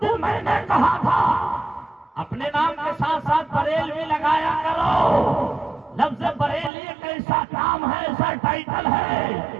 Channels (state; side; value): drops out; left; at 6.7 s